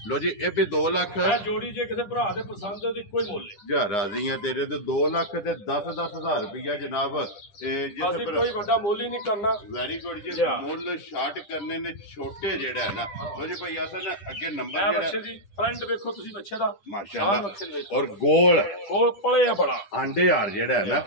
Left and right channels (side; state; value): right; late; 10 ms